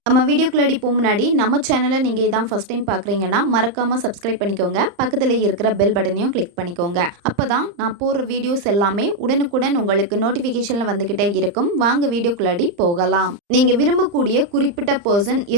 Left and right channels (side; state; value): left; late; 34 ms